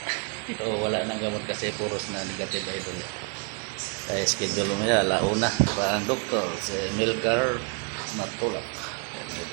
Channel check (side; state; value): left; quieter; 34.2 dB